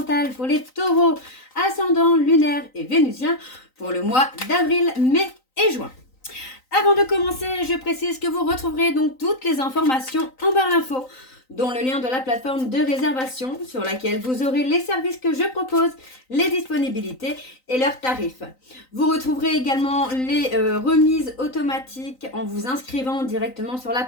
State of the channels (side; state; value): right; late; 3.9 ms